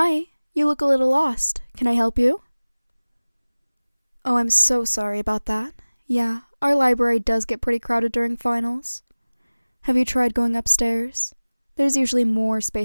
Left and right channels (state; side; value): inverted; both; correlation -1.00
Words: you look a little lost. Can I help you? Oh, I'm so sorry about that. Yeah, our library does get pretty crowded during finals. Have you tried going upstairs? There's usually more